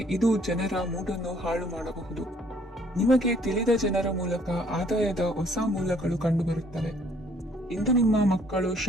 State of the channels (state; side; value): normal; both; correlation 0.62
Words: ಇದು ಜನರ ಮೂಡನ್ನು ಹಾಳು ಮಾಡಬಹುದು. ನಿಮಗೆ ತಿಳಿದ ಜನರ ಮೂಲಕ ಆದಾಯದ ಹೊಸ ಮೂಲಗಳು ಕಂಡುಬರುತ್ತವೆ. ಇಂದು ನಿಮ್ಮ ಮಕ್ಕಳು